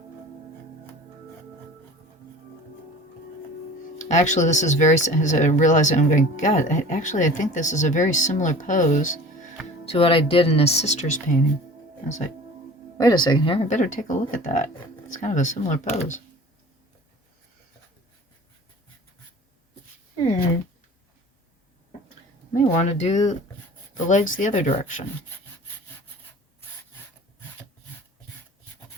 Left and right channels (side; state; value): both; normal; correlation 0.42